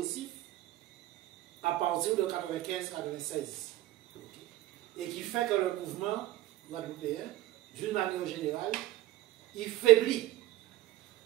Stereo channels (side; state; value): left; quieter; 16.0 dB